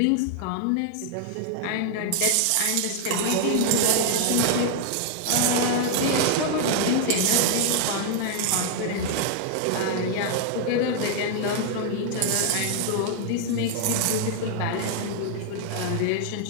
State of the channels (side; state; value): both; different; correlation 0.00